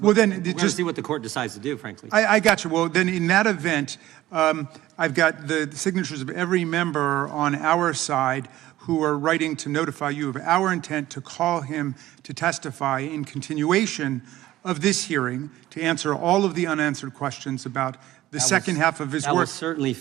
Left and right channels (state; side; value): quieter; left; 15.2 dB